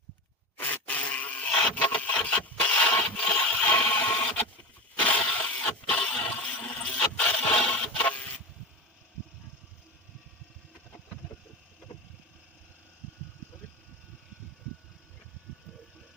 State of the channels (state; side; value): normal; both; correlation 0.26